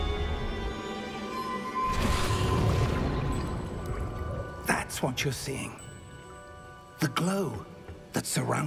That's what you're seeing. The glow that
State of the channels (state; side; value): identical; both; correlation 1.00